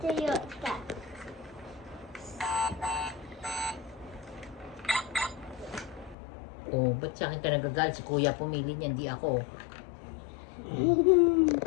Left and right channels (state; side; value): drops out; right; at 6.2 s